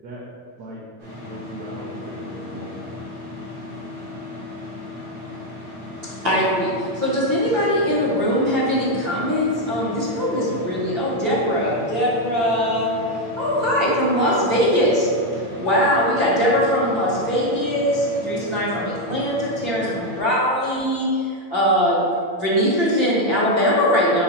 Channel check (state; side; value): late; left; 8.7 ms